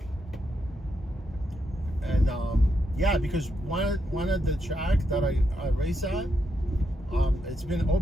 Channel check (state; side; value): normal; both; correlation 0.82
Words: Yeah, because one of the track that I race at, it's been